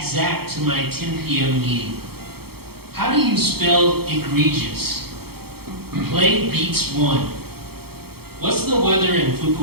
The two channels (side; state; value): left; late; 0.95 ms